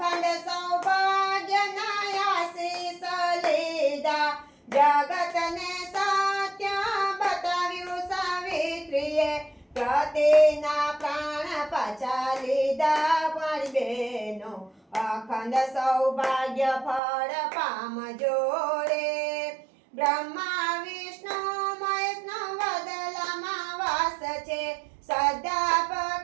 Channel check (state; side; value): drops out; left; at 17.0 s